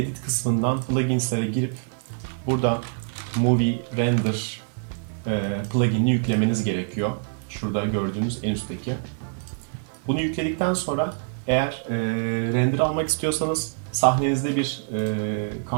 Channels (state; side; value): silent; left; digital silence